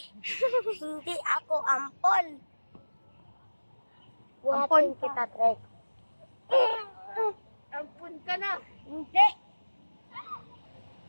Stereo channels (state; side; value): inverted; both; correlation -1.00